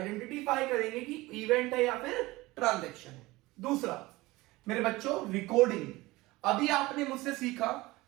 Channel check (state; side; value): quieter; left; 20.3 dB